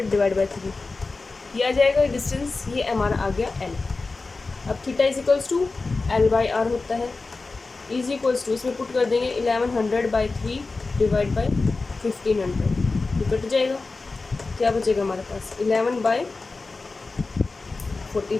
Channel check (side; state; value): right; quieter; 3.8 dB